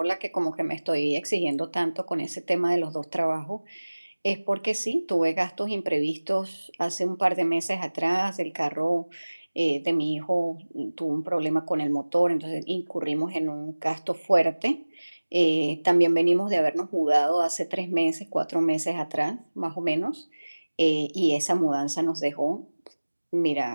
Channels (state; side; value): inverted; both; correlation -1.00